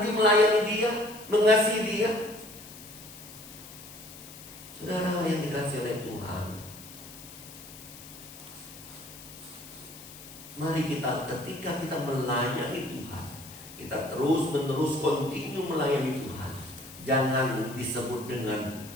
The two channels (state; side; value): noise; left; hiss, 16 dB below the sound